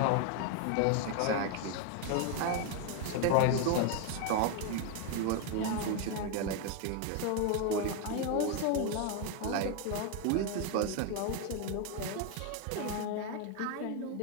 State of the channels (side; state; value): both; different; correlation 0.01